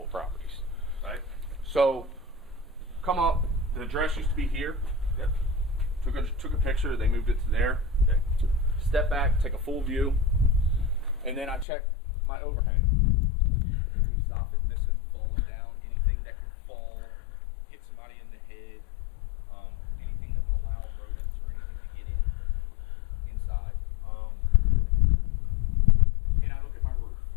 properties. Right. So come up. The address used to be here. Yep. Took a picture. They moved it to there. Okay. Step back, take a full view, and then I check my overhang. Any soffit missing, falling down, anything that could fall, hit somebody in the head, anything that would allow rodents or anything to get inside. And I look at my roof.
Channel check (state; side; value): drops out; right; at 11.7 s